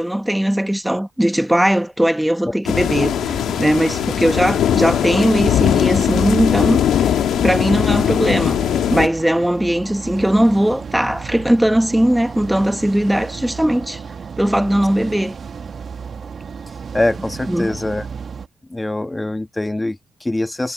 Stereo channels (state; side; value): normal; both; correlation 0.89